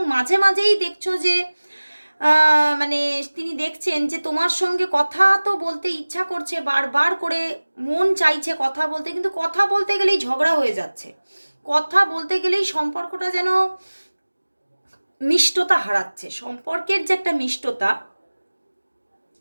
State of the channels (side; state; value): both; inverted; correlation -1.00